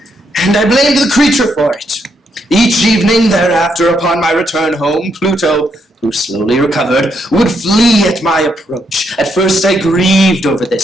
And I blamed the creature for it. Each evening thereafter, upon my return home, Pluto, who slowly recovered, would flee at my approach. At first I grieved over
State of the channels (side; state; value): both; normal; correlation 0.77